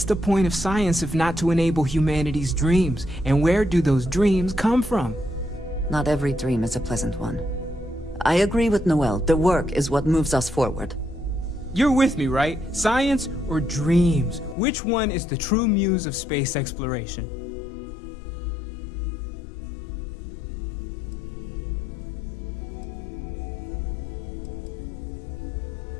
the point of science if not to enable humanity's dreams? And where do those dreams come from? Not every dream is a pleasant one. I agree with Noel. The work is what moves us forward. You're with me, right? Science or dreams? Which one is the true muse of space exploration?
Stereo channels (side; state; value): right; drops out; at 14.6 s